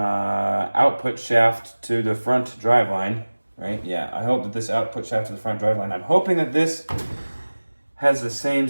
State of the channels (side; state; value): both; inverted; correlation -1.00